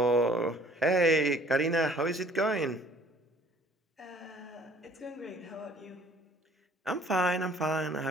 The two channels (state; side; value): normal; both; correlation 0.56